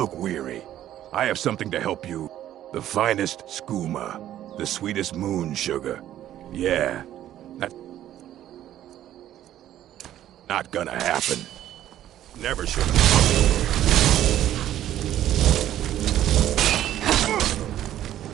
weary. I have something to help you. The finest skooma. The sweetest moon sugar. Yeah. Not gonna happen. Never should have.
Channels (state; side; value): quieter; left; 12.3 dB